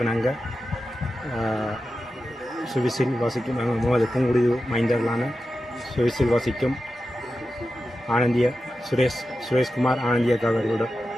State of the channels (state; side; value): normal; both; correlation 0.91